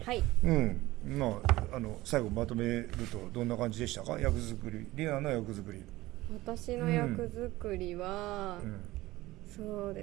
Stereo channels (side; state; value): left; quieter; 18.1 dB